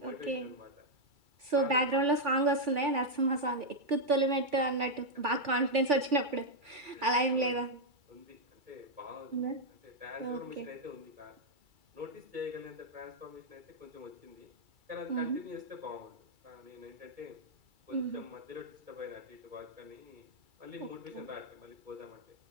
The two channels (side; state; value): left; late; 2.3 ms